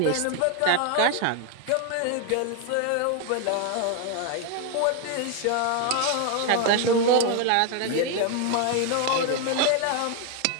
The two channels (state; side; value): different; both; correlation 0.01